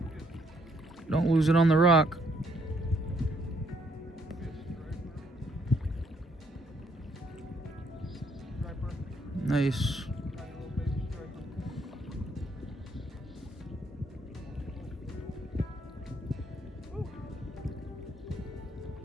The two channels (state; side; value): normal; both; correlation 0.70